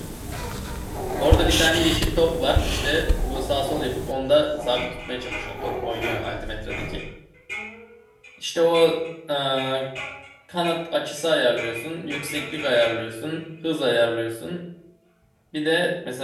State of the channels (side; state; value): both; identical; correlation 1.00